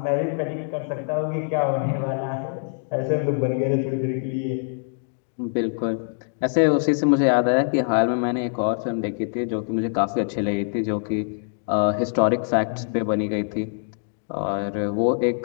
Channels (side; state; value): right; silent; digital silence